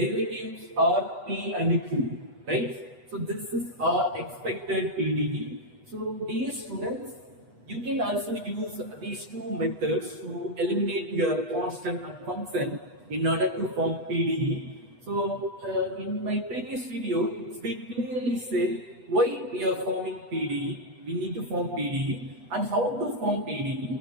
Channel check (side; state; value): left; late; 8.1 ms